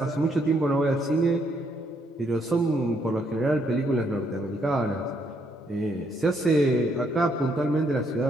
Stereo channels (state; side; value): normal; both; correlation 0.72